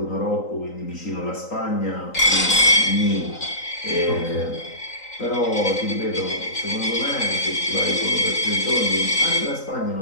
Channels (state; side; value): late; right; 3.9 ms